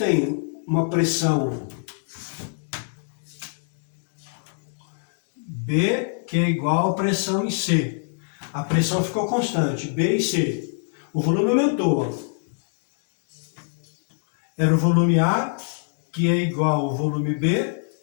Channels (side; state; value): right; silent; 62 dB below the other